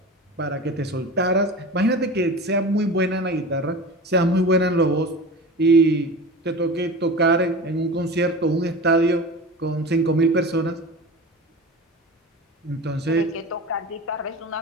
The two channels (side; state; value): both; normal; correlation 0.32